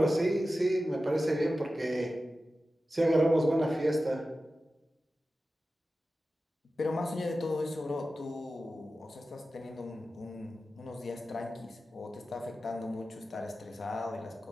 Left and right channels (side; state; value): both; normal; correlation 0.94